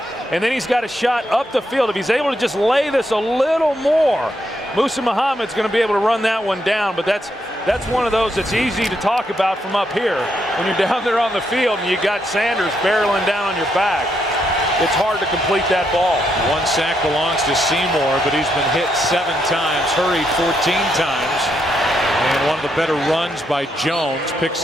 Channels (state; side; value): normal; both; correlation 0.78